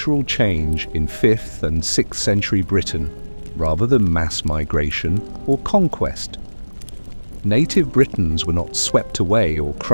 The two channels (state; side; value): inverted; both; correlation -1.00